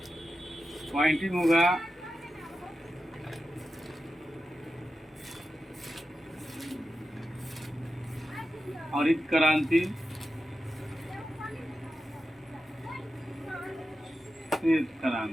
पॉइंटिंग होगा हरित क्रांति, श्वेत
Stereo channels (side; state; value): both; normal; correlation 0.91